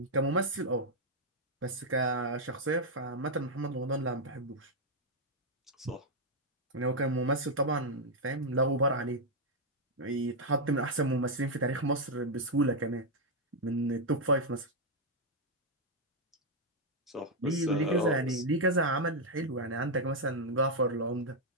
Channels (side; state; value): both; normal; correlation -0.01